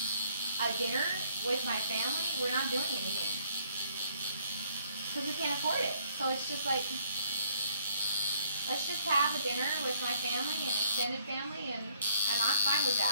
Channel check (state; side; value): inverted; both; correlation -0.63